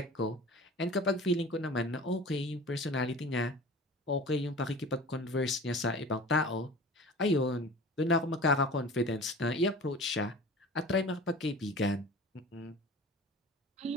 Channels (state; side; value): normal; both; correlation 0.40